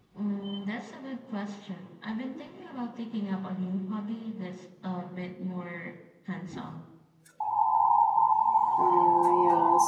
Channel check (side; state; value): both; identical; correlation 1.00